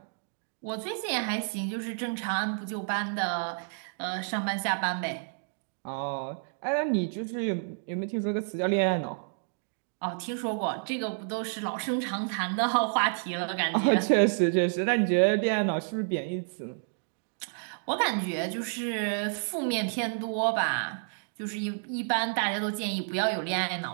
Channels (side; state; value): left; silent; digital silence